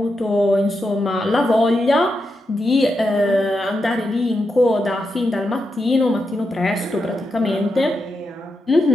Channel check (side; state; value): both; normal; correlation 0.86